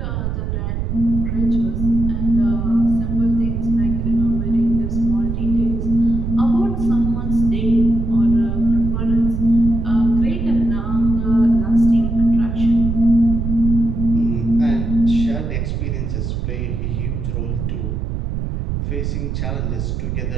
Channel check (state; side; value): noise; right; rumble, 2 dB below the sound